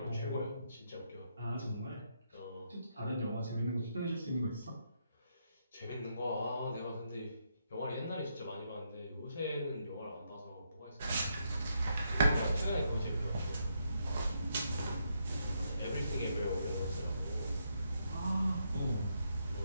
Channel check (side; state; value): both; inverted; correlation -0.78